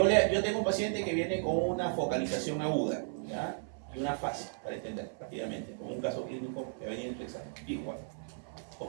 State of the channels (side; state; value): left; silent; 55 dB below the other